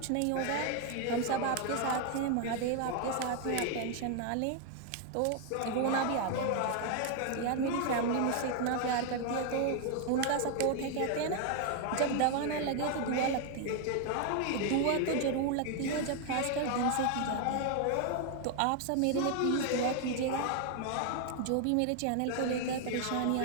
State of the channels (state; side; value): different; both; correlation 0.00